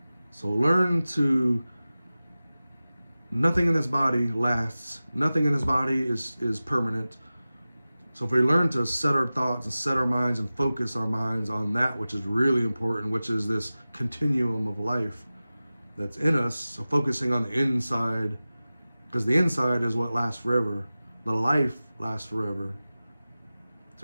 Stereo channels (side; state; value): both; inverted; correlation -0.96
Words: So learn to, nothing in this body lasts. Nothing in this body is permanent. So if we learn to set our thoughts and set our minds and focus our minds on that which is really important, which is this continuum of life that's in us. So focusing on the inside, because the inside is what lasts forever. The life lasts forever.